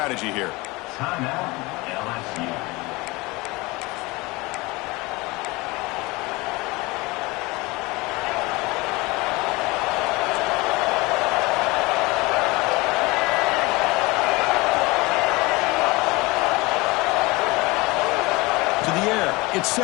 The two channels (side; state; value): right; quieter; 23.4 dB